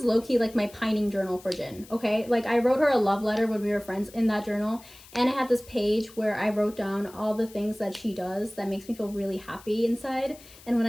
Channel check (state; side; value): noise; left; hiss, 21 dB below the sound